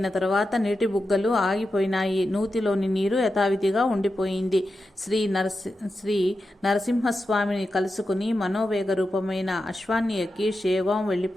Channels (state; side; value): normal; both; correlation 0.90